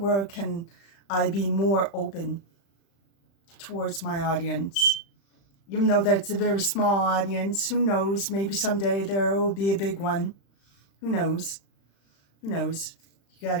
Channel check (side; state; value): right; late; 36 ms